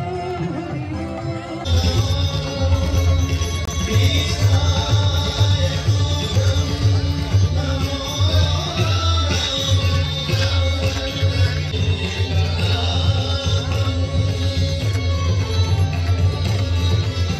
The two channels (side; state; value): both; identical; correlation 1.00